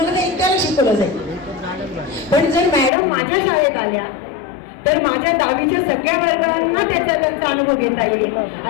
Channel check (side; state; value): right; drops out; at 2.9 s